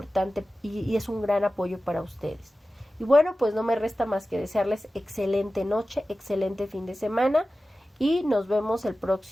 y es un gran apoyo para ustedes. Y bueno, pues no me resta más que desearles excelente noche, excelente fin de semana, y nos vemos el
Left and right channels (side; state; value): both; normal; correlation 0.95